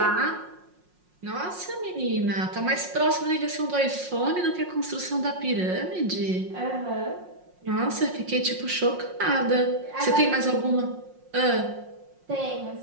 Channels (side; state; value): left; late; 5.5 ms